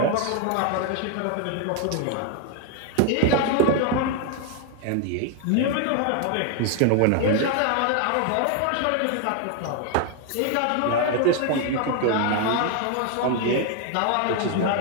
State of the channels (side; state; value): both; different; correlation 0.00